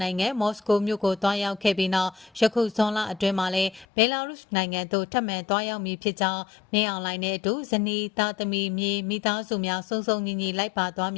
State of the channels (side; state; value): right; drops out; at 3.9 s